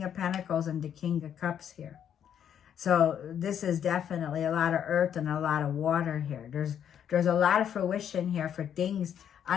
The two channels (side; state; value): right; quieter; 9.0 dB